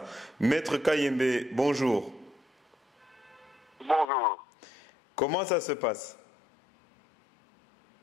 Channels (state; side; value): drops out; right; at 4.0 s